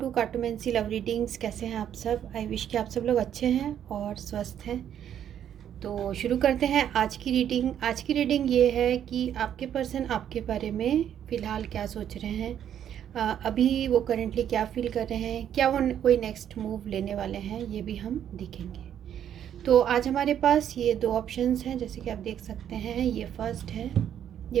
cartomancy love readings. कैसे हैं आप सब? आई विश कि आप सब लोग अच्छे हैं और स्वस्थ हैं। तो शुरू करते हैं आज की रीडिंग। आज की रीडिंग ये है कि आपके पर्सन आपके बारे में फ़िलहाल क्या सोच रहे हैं, अभी वो करेंटली क्या फील कर रहे हैं, क्या वो कोई नेक्स्ट मूव लेने वाले हैं, ये भी हम देखेंगे। तो आज हमारे पास ये दो ऑप्शंस हैं, जैसे कि आप देख सकते हैं। ये फर्स्ट है,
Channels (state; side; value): quieter; left; 9.8 dB